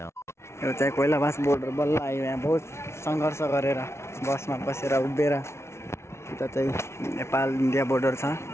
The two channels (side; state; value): right; late; 0.13 ms